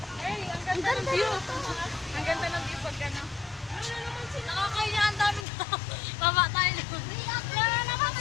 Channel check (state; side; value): drops out; right; at 5.5 s